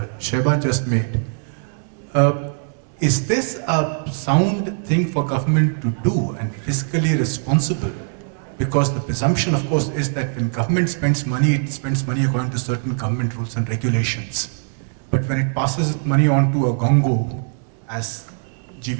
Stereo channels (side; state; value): left; silent; digital silence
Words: Sheba just made, is this a sound thing for government to do and fiscally responsible? Because the presumption, of course, is that when government spends money, it spends money according to certain government rules and regulations. But when it passes money on to a gongo, as